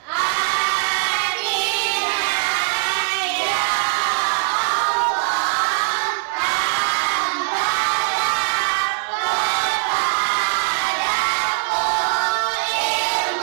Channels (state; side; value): silent; left; digital silence